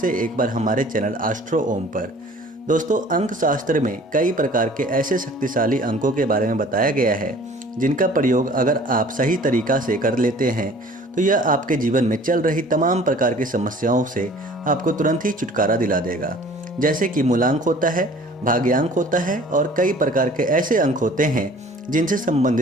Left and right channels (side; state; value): both; normal; correlation 0.49